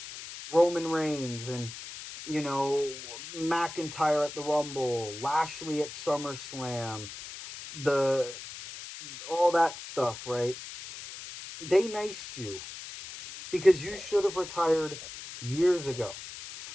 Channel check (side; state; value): left; noise; hiss, 12 dB below the sound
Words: Roman Reigns, and, McIntyre at the Rumble, Lashley at SummerSlam, the all that stuff, right? They niced you because you should have retired years ago.